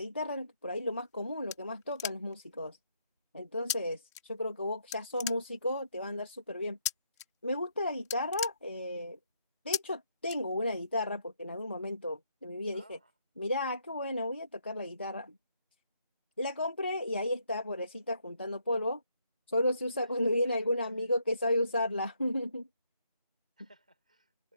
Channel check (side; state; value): both; inverted; correlation -0.73